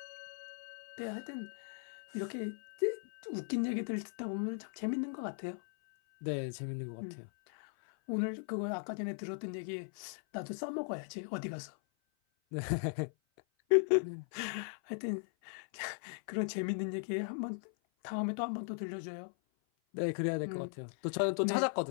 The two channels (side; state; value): right; silent; 52 dB below the other